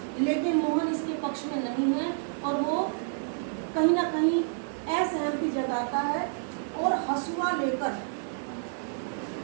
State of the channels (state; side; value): silent; left; digital silence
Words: लेकिन मोहन इसके पक्ष में नहीं है और वो कहीं ना कहीं असहमति जताता है और हसुआ